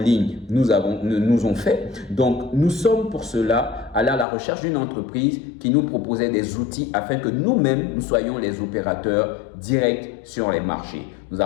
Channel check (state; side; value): drops out; right; at 4.2 s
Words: nous ont fait. Donc, nous sommes pour cela allés à la recherche d'une entreprise qui nous proposait des outils afin que nous-mêmes, nous soyons les opérateurs directs sur les marchés. Nous